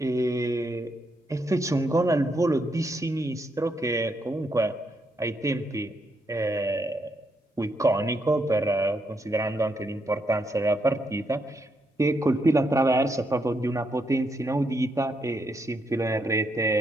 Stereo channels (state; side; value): normal; both; correlation 0.78